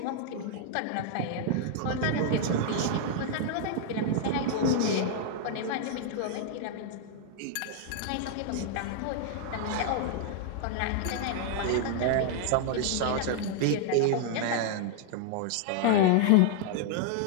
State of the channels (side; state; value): both; different; correlation 0.00